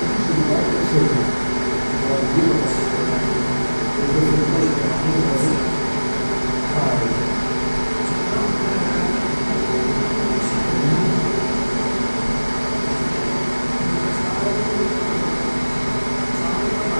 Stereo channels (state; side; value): inverted; both; correlation -1.00